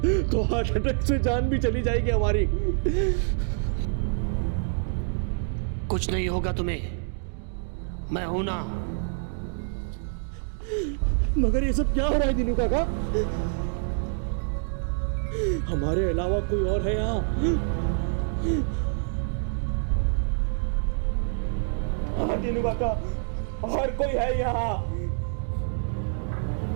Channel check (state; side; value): silent; left; 60 dB below the other